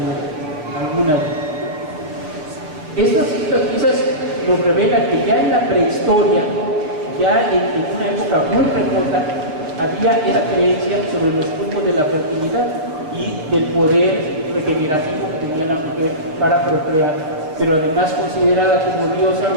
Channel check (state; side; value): late; left; 6.5 ms